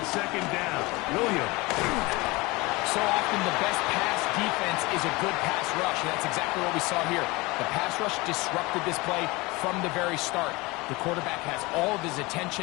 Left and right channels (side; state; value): right; quieter; 23.2 dB